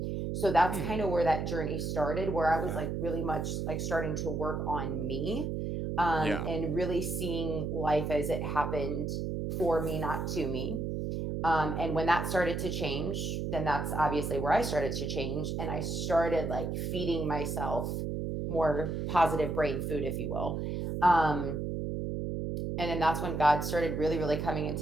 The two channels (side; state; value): right; noise; hum, 2 dB below the sound